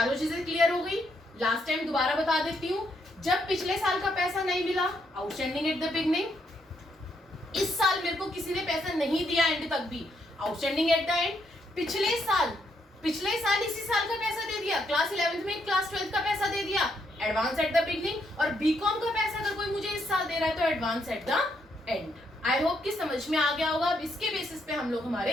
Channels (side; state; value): both; normal; correlation 0.76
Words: चीजें क्लियर हो गई। लास्ट टाइम दोबारा बता देती हूँ, जब पिछले साल का पैसा नहीं मिला आउटस्टैंडिंग एट द बिगनिंग, इस साल मेरे को किसी ने पैसा नहीं दिया एंड तक भी आउटस्टैंडिंग एट द एंड। पिछले साल इसी साल का पैसा दे दिया, क्लास 11th में क्लास 12th का पैसा दे दिया, एडवांस एट द बिगनिंग। और बीकॉम का पैसा अगर कोई मुझे इस साल दे रहा है तो advance at the end. I hope कि समझ में आ गया होगा। अब इसके बेसिस पे हम लोग हमारे